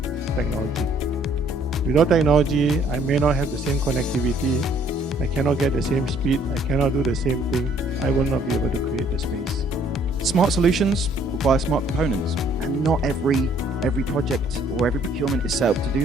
technology. Without technology, I may not have the same connectivity, I cannot get the same speed, I cannot do the same thing, I will not be able to create the space. Smart solutions require smart components, and not every project or every procurement is set up to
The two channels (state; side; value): normal; both; correlation 0.62